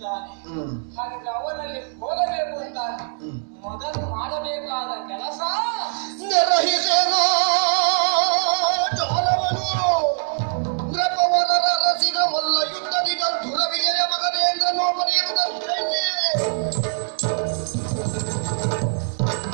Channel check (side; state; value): left; silent; digital silence